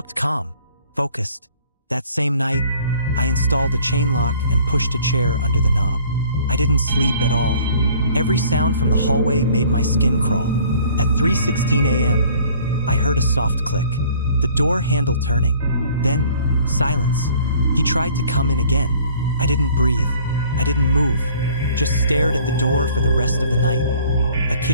calm, focused. That same night, I installed a chain lock and pushed a chair under the knob. I didn't sleep at all. Every sound from the hallway made my skin crawl. At 3:16 a.m., I heard a soft click, the door handle turning. Then, silence. He tried to come in again. I didn't breathe. I didn't move. Just stared at the door for the rest of the night. A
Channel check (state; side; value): inverted; both; correlation -0.54